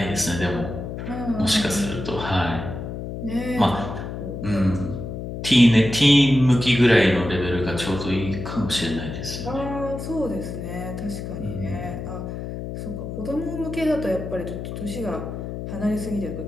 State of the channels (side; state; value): left; noise; hum, 7 dB below the sound